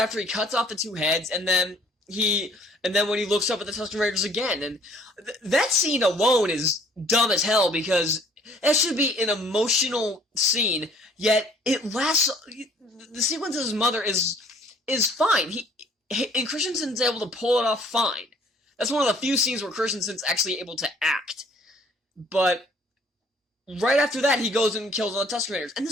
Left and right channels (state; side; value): normal; both; correlation 0.56